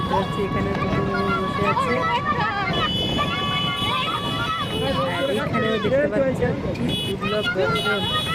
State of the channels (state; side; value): identical; both; correlation 1.00